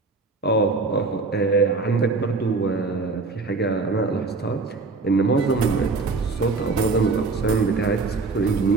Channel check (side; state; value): left; quieter; 3.9 dB